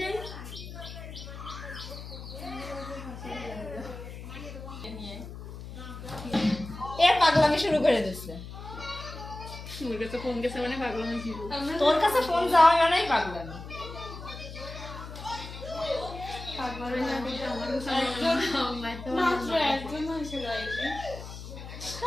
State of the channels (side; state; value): left; noise; hum, 11 dB below the sound